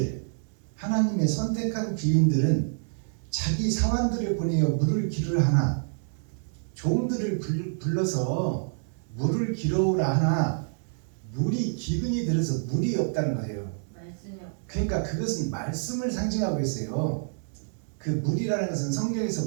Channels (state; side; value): silent; left; digital silence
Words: 하나님의 선택한 귀인들은 자기 사환들을 보내어 물을 기르라 하나, 종들을 불러서 물을 기르라 하나 물이 기근이 들어서 물이 없다는 거예요. 그러니까 그것은 말씀을 상징하고 있어요. 그 물이라는 것은